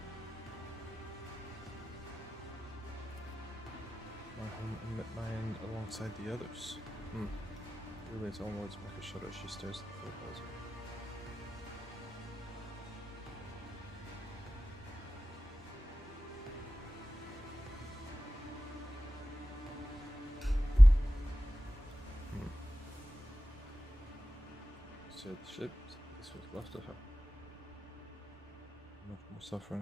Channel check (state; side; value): normal; both; correlation 0.94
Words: My home and met my end alongside the others. Really, its own words make her shudder as she stares at the photos. Said the ship, this was left of her. Much more